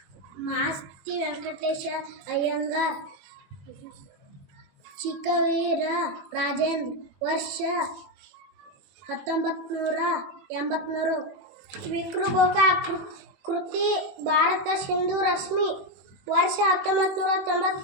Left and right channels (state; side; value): late; left; 21 ms